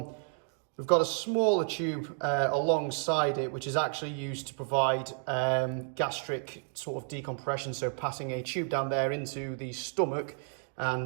We've got a smaller tube alongside it, which is actually used to provide gastric sort of decompression, so passing a tube down there into the stomach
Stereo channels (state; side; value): silent; left; 57 dB below the other